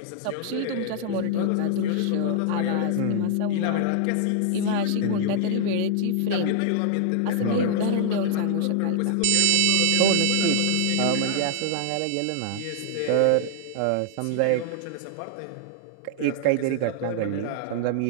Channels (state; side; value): different; both; correlation -0.01